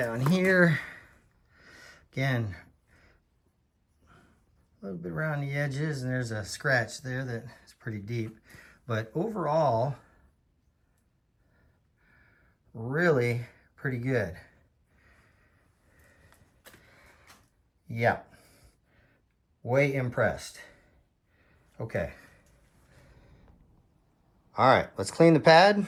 here. Again, a little bit around the edges, and there's a scratch there that is pretty deep. But overall, really pretty good. Yeah, way impressed. Okay. All right, let's clean the pad.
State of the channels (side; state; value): both; identical; correlation 1.00